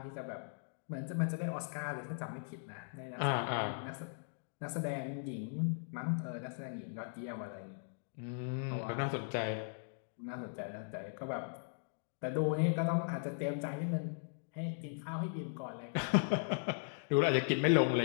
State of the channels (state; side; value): silent; right; digital silence